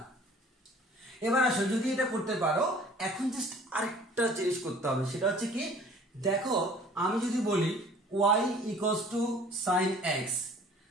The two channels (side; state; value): both; normal; correlation 0.50